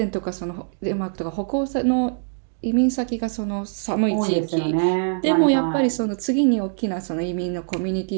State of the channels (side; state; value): left; silent; digital silence